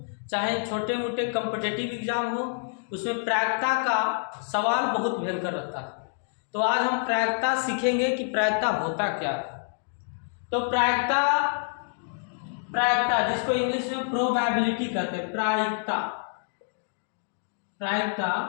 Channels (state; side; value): silent; right; digital silence